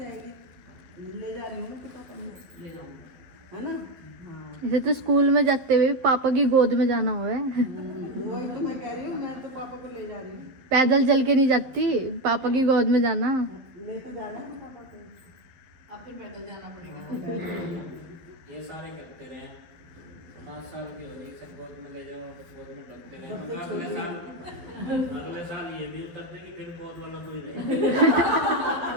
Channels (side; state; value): left; late; 12 ms